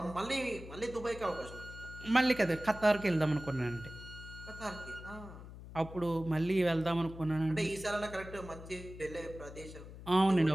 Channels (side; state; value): left; noise; hum, 14 dB below the sound